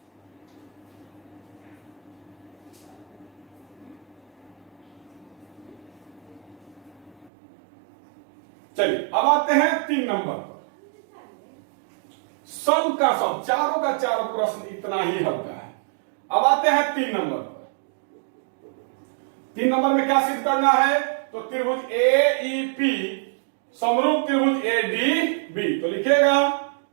चलिए अब आते हैं 3 नंबर पर। सब का सब, चारों का चारों प्रश्न इतना ही हल्का है। अब आते हैं 3 नंबर पर। 3 नंबर में क्या सिद्ध करना है? तो त्रिभुज AEP समरूप त्रिभुज ADB। तो लिखेगा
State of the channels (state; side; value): drops out; left; at 7.3 s